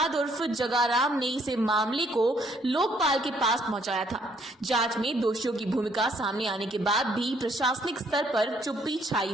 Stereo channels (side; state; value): both; normal; correlation 0.67